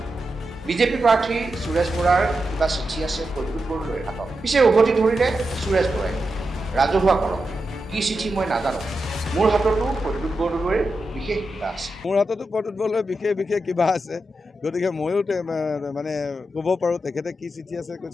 বিজেপি প্ৰাৰ্থী সুৰেশ বৰাৰ কিবা চিঠি আছে প্ৰদ্যুৎ বৰদলৈৰ হাতত। পিছে উভতি ধৰিলে সুৰেশ বৰাই। ৰাজহুৱা কৰক, কি চিঠি মই নাজানো। মোৰ হাততো প্ৰদ্যুৎ বৰদলৈৰ বিশেষ কিবা আছে। মোৰ হাততো প্ৰদ্যুৎ বৰদলৈৰ বিশেষ কিবা আছে। গতিকে ময়ো মানে ক'ব পাৰোঁ তেখেতে কি চিঠি আছে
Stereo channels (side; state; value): both; normal; correlation 0.88